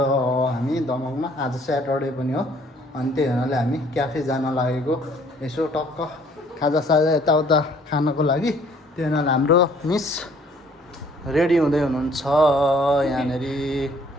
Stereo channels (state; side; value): normal; both; correlation 0.59